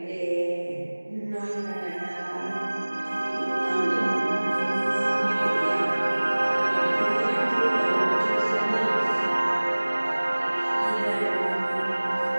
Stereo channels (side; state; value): both; inverted; correlation -1.00